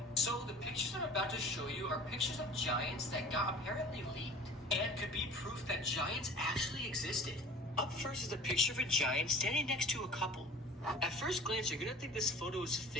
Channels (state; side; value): normal; both; correlation 0.44